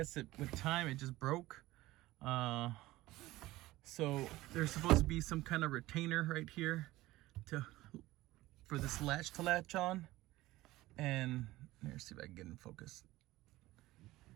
with time it just broke. So there's supposed to be some kind of retainer right here for this latch to latch on. And let's see if I can get in focus.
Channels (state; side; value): quieter; left; 17.7 dB